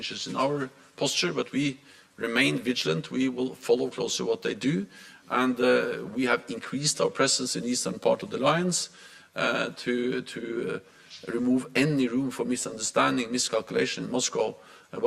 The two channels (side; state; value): both; identical; correlation 1.00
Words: in our posture, but we remain vigilant. We will follow closely what they do, and we have increased our presence in the eastern part of the alliance to remove any room for misunderstanding, miscalculation in Moscow